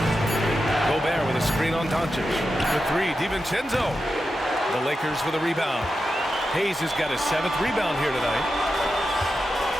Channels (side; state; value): both; normal; correlation 0.90